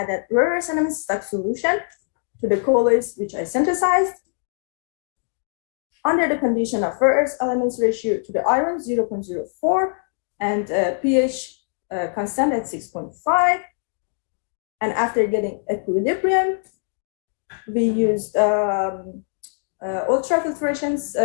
rare earth elements stock solution to the colloids which I synthesized under the condition of rare earth elements ratio to the iron 0.04 and pH constant at 6.5. And after getting equilibrium, we used ultrafiltration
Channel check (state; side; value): silent; right; digital silence